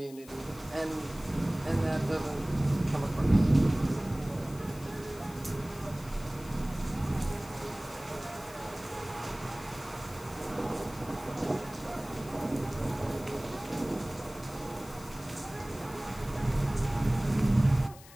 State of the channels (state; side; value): noise; left; hiss, 20 dB below the sound